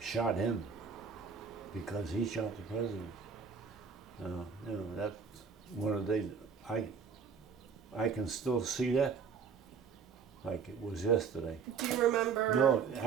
him because he shot the president. You know, that's one of the days I can still see that like it was yesterday. Do you remember? No,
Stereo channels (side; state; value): left; quieter; 6.1 dB